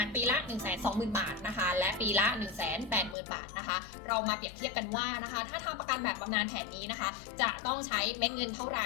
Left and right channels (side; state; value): right; drops out; at 3.2 s